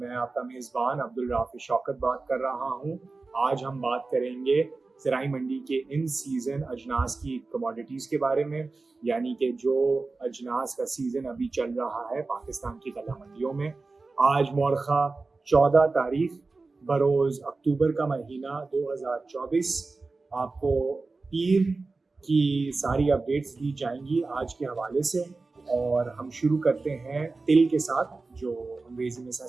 आपका मेज़बान अब्दुल राफ़ी शौकत बात कर रहा हूँ। आज हम बात करेंगे ज़राई मंडी के इन सीज़न अजनास की कमोडिटीज़ के बारे में, यानी कि जो अजनास का सीज़न अभी चल रहा है पाकिस्तान की गल्ला मंडियों में। आज मौरख़ा 14 तारीख बरोज़ अक्टूबर का महीना 2024। आपको पीर की सारी अपडेट्स दी जाएंगी आज के हवाले से। और हम शुरू करते हैं तिल के साथ, जो अंग्रेजी में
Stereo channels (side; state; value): left; quieter; 3.7 dB